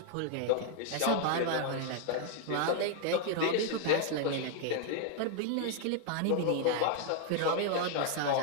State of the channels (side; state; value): both; different; correlation 0.00